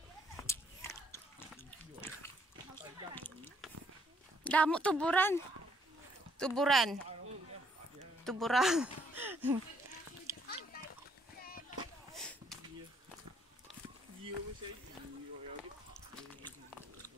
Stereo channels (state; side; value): normal; both; correlation 0.68